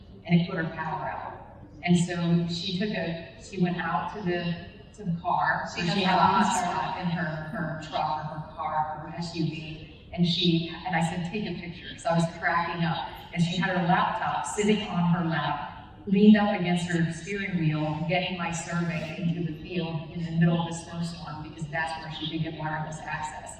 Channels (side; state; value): both; identical; correlation 1.00